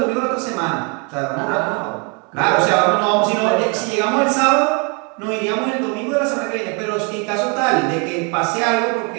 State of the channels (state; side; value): quieter; left; 34.0 dB